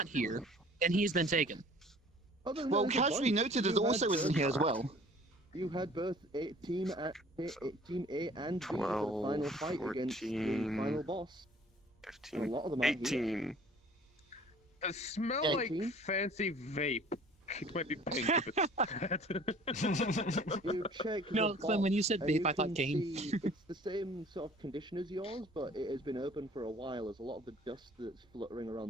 here, and he's been taken. Other than Well, that, there's a Casually bunch. Noted is You also had isn't both- here as well. You had both Team A and B for the 12, final fight against the 14, final boss. And a 15, lot of them aren't here. 18. It smell Yeah, like 18? fancy vape. It might be pink if it's bad. You check No, the Clem, when you said box, and vape, I thought can game. see it's the same sort of condition as yours, but it has been open for a while, as a lot of the dust that's fluttering around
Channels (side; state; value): both; normal; correlation 0.51